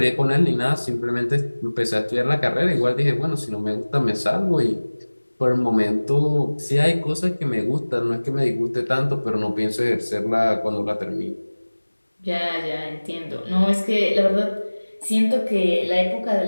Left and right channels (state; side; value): inverted; both; correlation -1.00